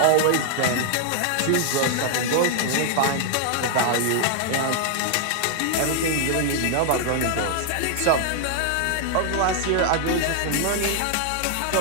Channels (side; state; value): both; different; correlation 0.00